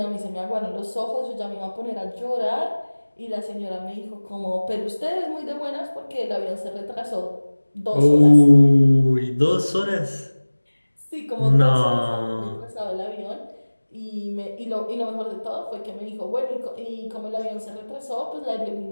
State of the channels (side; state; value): both; inverted; correlation -1.00